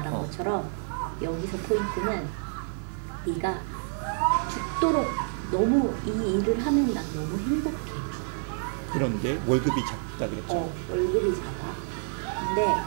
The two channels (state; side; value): silent; left; 59 dB below the other